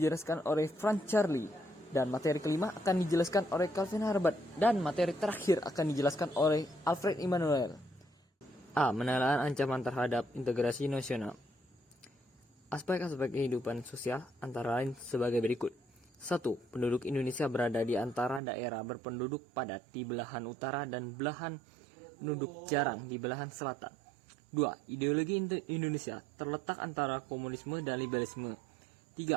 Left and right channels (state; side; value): drops out; left; at 18.4 s